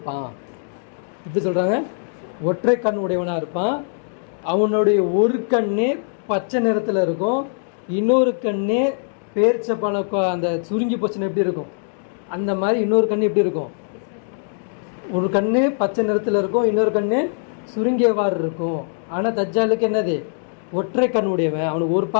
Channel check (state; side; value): silent; right; digital silence